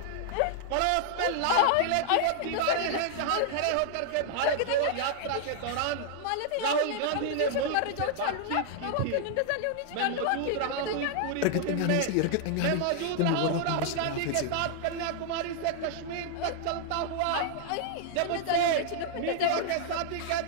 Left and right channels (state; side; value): different; both; correlation 0.00